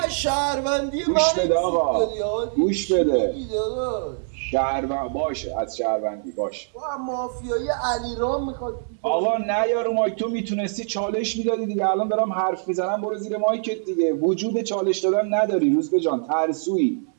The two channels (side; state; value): left; silent; 63 dB below the other